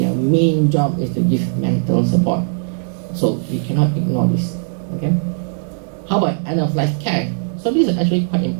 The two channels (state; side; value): silent; left; digital silence